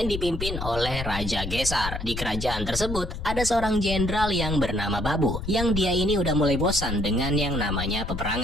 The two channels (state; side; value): noise; left; rumble, 6 dB below the sound